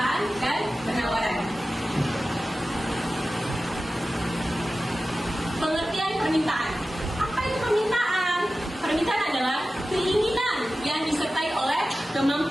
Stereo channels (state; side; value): normal; both; correlation 0.95